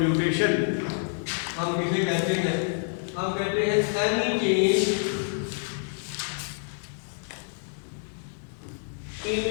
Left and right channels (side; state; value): right; silent; digital silence